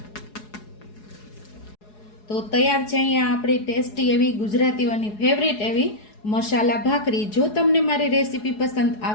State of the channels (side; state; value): right; late; 4.8 ms